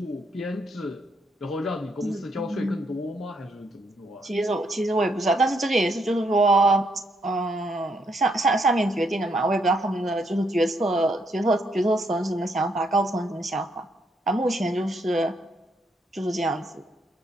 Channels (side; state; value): both; normal; correlation 0.75